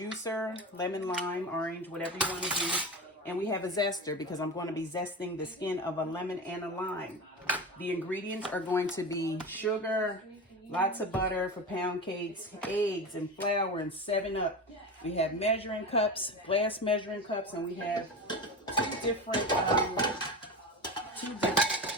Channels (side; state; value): both; normal; correlation 0.25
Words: lemon, lime, orange, whatever you want to do. And we have a zester because I'm going to be zesting the skin of a lemon and a lime. The ingredients are going to be sugar, lots of butter for pound cakes, eggs and flour, and 7-Up. We have measuring cups, glass measuring cups, and we have two different